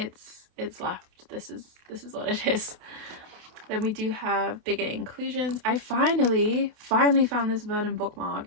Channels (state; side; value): late; left; 28 ms